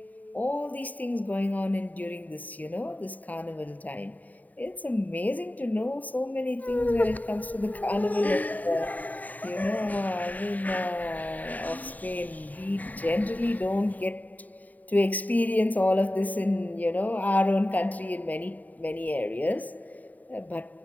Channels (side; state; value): right; late; 0.077 ms